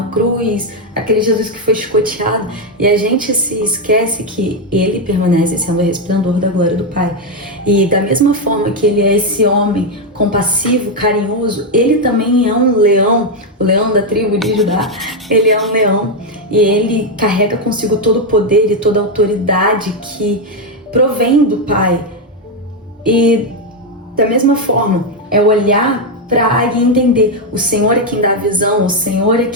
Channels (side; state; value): both; normal; correlation 0.04